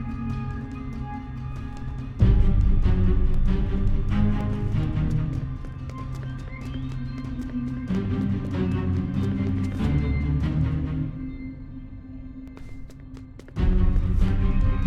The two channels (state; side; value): identical; both; correlation 1.00